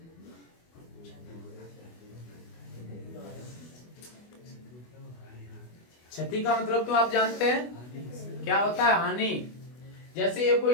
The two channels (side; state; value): right; late; 24 ms